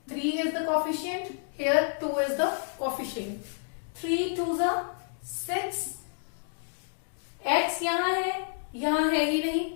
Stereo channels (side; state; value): right; silent; digital silence